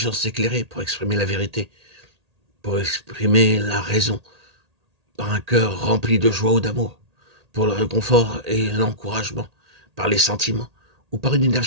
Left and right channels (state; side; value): late; left; 1.8 ms